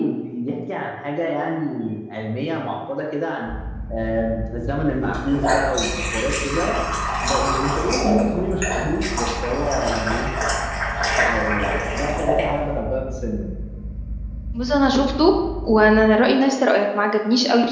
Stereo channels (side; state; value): both; identical; correlation 1.00